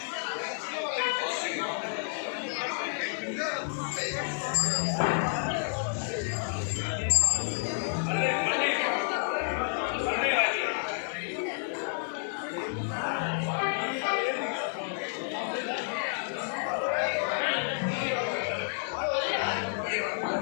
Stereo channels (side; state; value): right; silent; digital silence